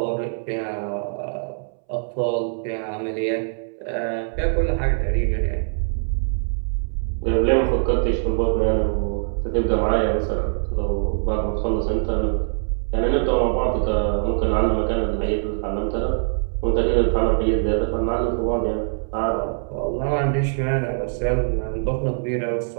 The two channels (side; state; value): left; silent; 63 dB below the other